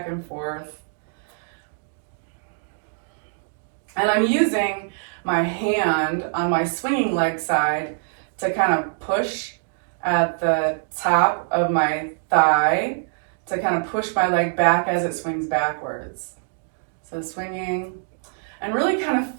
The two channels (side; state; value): left; silent; digital silence